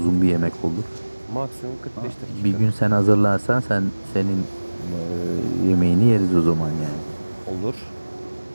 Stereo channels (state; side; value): inverted; both; correlation -1.00